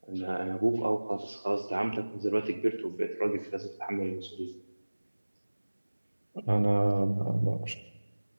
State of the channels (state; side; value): inverted; both; correlation -1.00